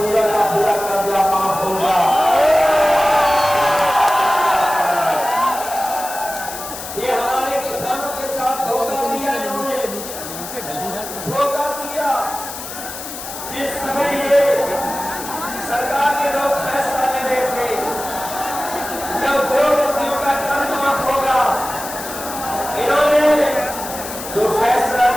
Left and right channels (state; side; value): noise; left; hiss, 10 dB below the sound